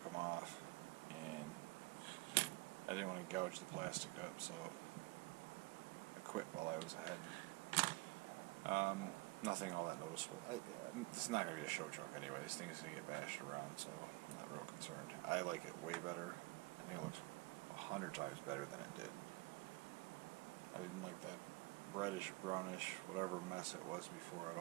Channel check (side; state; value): left; quieter; 23.8 dB